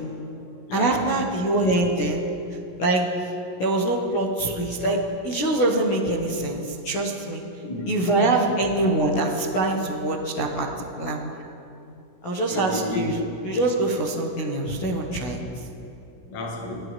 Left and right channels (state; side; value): late; right; 17 ms